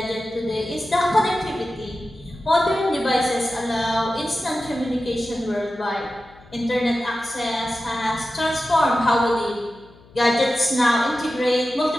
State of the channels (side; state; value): left; noise; hum, 26 dB below the sound